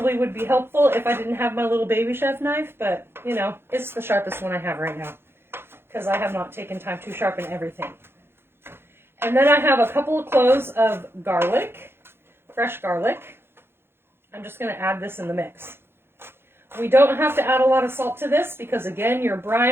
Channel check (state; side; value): late; left; 0.11 ms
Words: would be helpful if I didn't have my little baby chef knife, but, you know, it's the sharpest one I have right now, because I have not taken time to sharpen everything. And then I have a couple of cloves of garlic, fresh garlic. I'm just going to add this in the mix. We don't have to add a lot of salt to this because, again, your